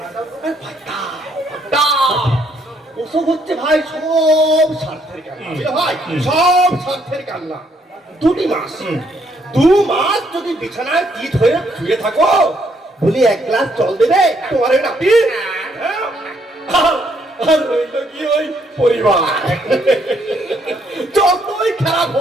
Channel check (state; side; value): normal; both; correlation 0.71